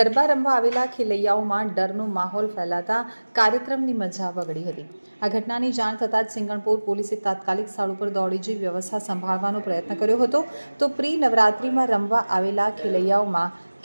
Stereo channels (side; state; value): both; inverted; correlation -1.00